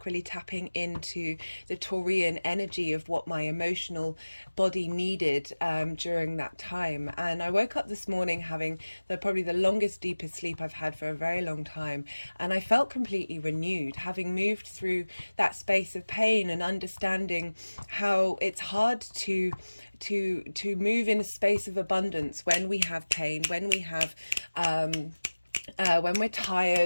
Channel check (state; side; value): inverted; both; correlation -1.00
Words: really tapping into the Taurian energy of what my emotional body needed during that time. And I woke up this morning having probably the longest, deepest sleep I've had for a very long time. And I felt completely renewed, having moved through that space of pain and understanding how it's hard to move in a space of abundance when we have pain, when we have when we're